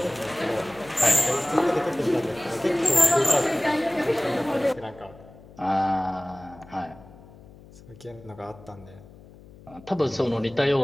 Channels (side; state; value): left; noise; hum, 21 dB below the sound